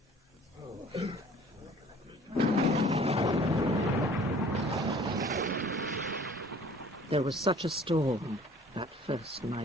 There was such a storm that first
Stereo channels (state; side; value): normal; both; correlation 0.51